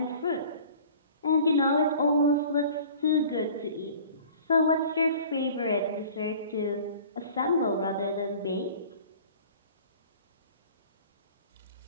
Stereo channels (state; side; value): inverted; both; correlation -0.46